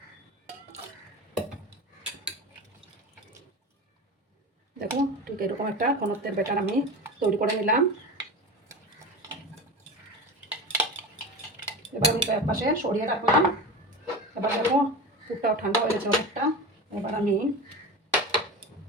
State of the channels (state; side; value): normal; both; correlation 0.28